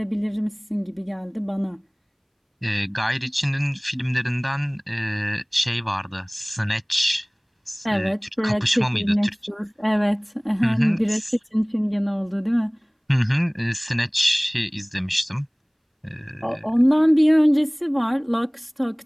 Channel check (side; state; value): both; identical; correlation 1.00